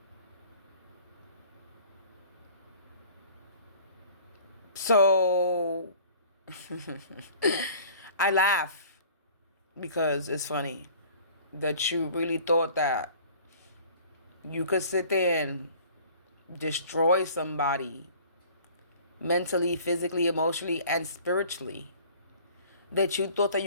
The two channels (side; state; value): both; inverted; correlation -0.49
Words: So I laugh because it's funny that you really thought that you could sit there and destroy somebody mentally, physically, emotionally, and spiritually. That you thought that